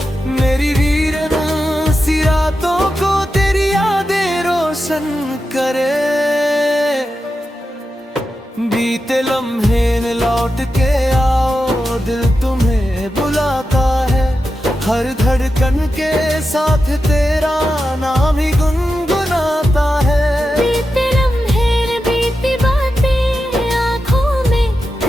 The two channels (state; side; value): normal; both; correlation 0.90